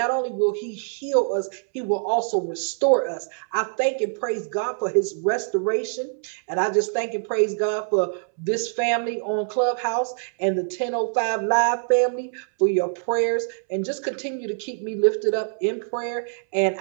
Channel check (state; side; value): silent; left; 62 dB below the other